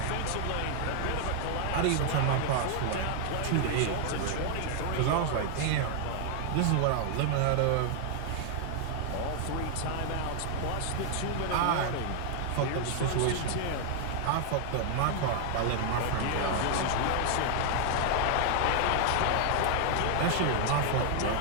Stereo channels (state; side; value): different; both; correlation 0.00